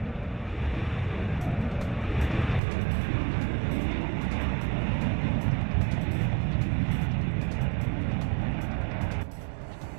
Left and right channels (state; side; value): drops out; left; at 2.6 s